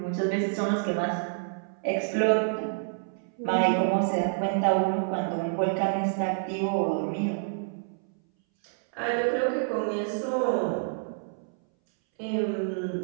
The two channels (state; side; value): silent; left; 59 dB below the other